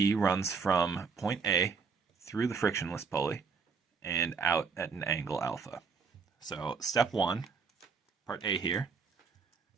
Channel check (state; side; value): quieter; left; 5.3 dB